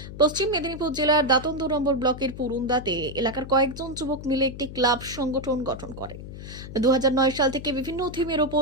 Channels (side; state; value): left; noise; hum, 12 dB below the sound